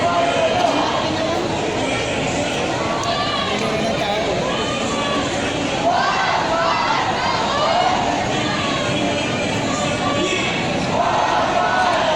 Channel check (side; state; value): left; noise; rumble, 24 dB below the sound